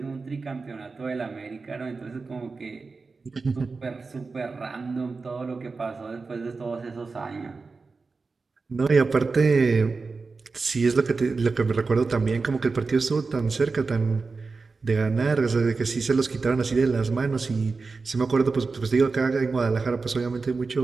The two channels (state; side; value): quieter; left; 4.2 dB